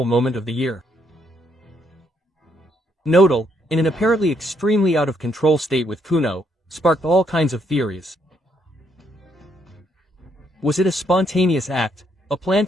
moment of the year. Nodal, in an apparently extremely out-of-control state with Kuno, sparked all kinds of theories. Was it a spontaneous act, a plan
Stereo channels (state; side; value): normal; both; correlation 0.73